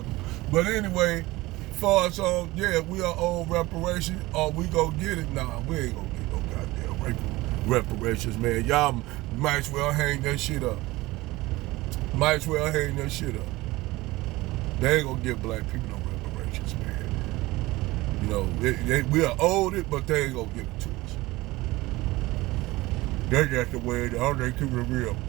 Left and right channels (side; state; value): left; quieter; 19.8 dB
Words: But anyway, far as we are owed reparations, or we go get it. Nah, we ain't gonna get no goddamn reparations, man. Y'all might as well hang that shit up. Might as well hang that shit up. They ain't gonna give black people no reparations, man. You know, we are owed it, but they ain't gonna give it to us. That's just the way it is. They keep it real.